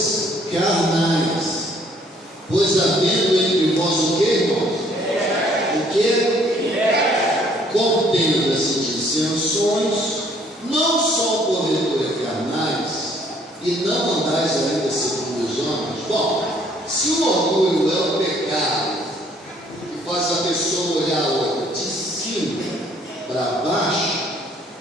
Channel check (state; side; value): normal; both; correlation 0.62